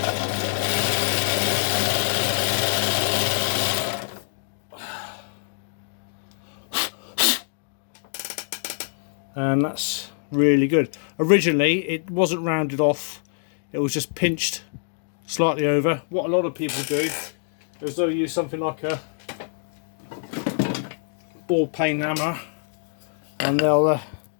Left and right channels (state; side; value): silent; right; digital silence